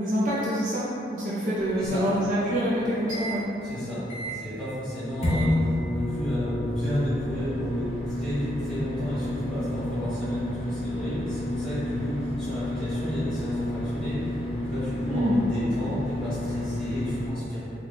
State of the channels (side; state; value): both; normal; correlation 0.76